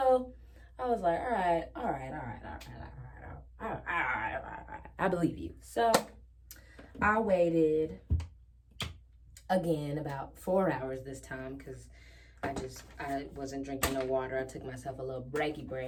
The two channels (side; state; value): both; identical; correlation 1.00